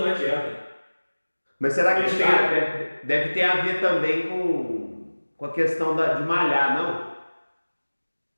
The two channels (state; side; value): inverted; both; correlation -1.00